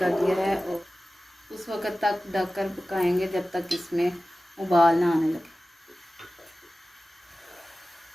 दिया है और उस वक़्त तक ढककर पकाएंगे जब तक इसमें उबाल ना आने लगे।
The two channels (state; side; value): normal; both; correlation 0.96